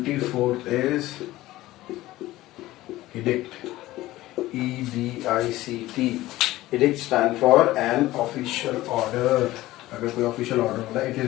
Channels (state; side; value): quieter; right; 16.8 dB